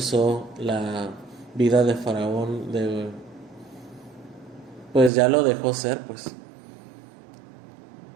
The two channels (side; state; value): left; drops out; at 5.1 s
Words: la vida de Faraón pues ya lo dejó ser, pues